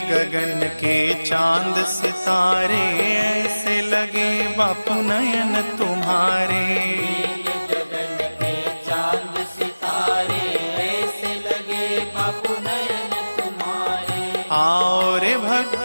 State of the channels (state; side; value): inverted; both; correlation -0.99